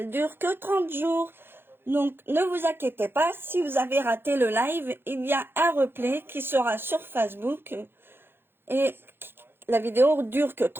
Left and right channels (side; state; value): left; late; 0.10 ms